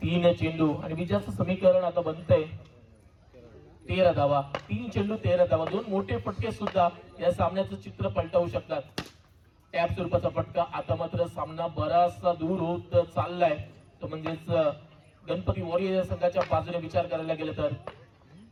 3 चेंडू आणि विजयाचं समीकरण आता बनतंय 13 धावा. 3 चेंडू 13 धावा. 2 मोठे फटके सुद्धा या सामन्याचं चित्र पलटवू शकतात. टॅप स्वरूपाचा फटका. आता मात्र सामना बराचसा दूर होत चाललाय. तो म्हणजेच गणपती वॉरियर संघाच्या बाजूने विचार करायला गेलं तर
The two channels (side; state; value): both; identical; correlation 1.00